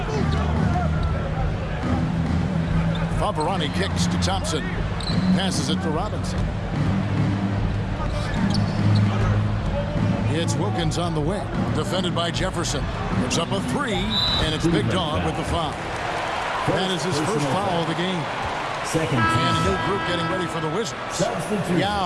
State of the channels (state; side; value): identical; both; correlation 1.00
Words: Favarani kicks to Thompson. Passes it to Robinson. It's Wilkins on the wing. Defended by Jefferson. Puts up a 3, and it's Big Dog with the foul. That is his first foul of the game. Second And a new group getting ready for the Wizards.